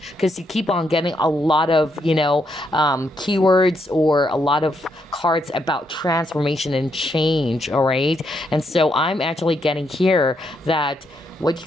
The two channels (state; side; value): normal; both; correlation 0.78